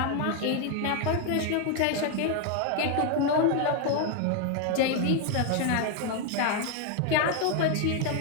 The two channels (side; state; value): both; different; correlation 0.01